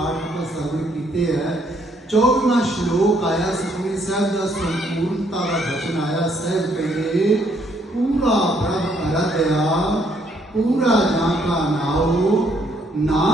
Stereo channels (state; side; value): normal; both; correlation 0.69